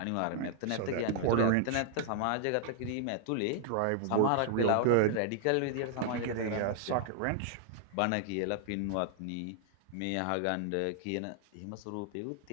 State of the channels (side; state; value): both; different; correlation -0.01